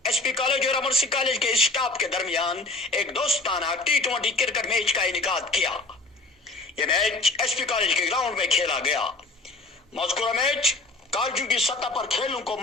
एसपी कॉलेज और अमर सिंह कॉलेज के स्टाफ के दरमियान एक दोस्ताना T20 क्रिकेट मैच का इनेकाद किया। यह मैच एसपी कॉलेज के ग्राउंड में खेला गया। मज़कूरा मैच कॉलेजों की सतह पर खेलों को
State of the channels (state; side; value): quieter; right; 3.2 dB